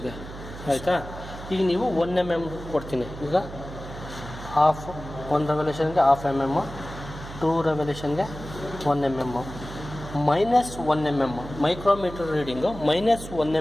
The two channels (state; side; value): noise; right; hum, 12 dB below the sound